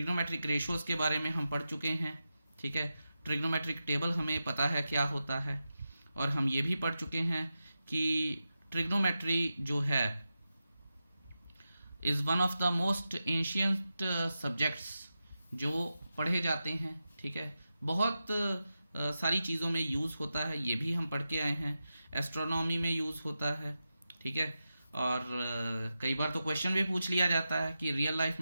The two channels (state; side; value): inverted; both; correlation -0.91